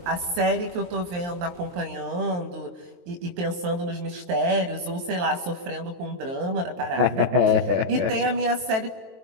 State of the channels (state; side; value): late; left; 23 ms